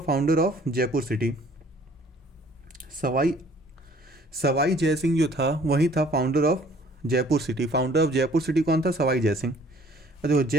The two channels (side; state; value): both; normal; correlation 0.56